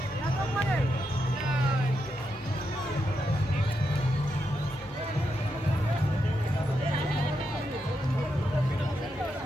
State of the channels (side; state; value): both; normal; correlation 0.84